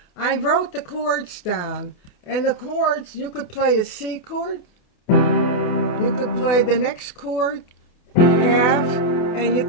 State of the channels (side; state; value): right; late; 28 ms